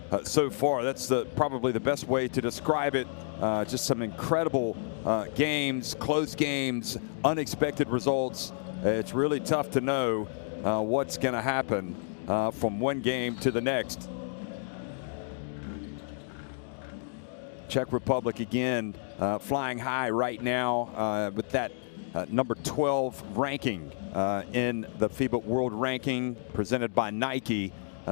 so far. That's probably the best way to describe it. Just some incredible games, close games, unexpected results. It's really tough to know what's going to happen from one game to the next. Czech Republic again flying high right now with that number 12 ranking in the FIBA World Ranking presented by Nike.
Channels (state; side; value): silent; right; digital silence